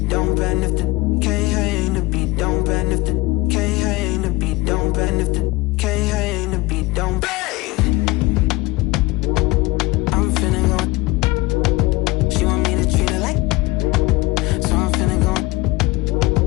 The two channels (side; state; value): right; quieter; 21.1 dB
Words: don't bend if the can't hang the beat, don't bend if the can't hang the beat, don't bend if the can't hang the beat, don't bang. I'm finna go. She want me to treat her like, so I'm finna go.